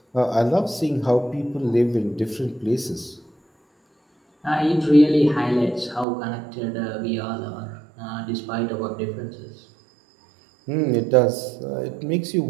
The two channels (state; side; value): drops out; left; at 6.1 s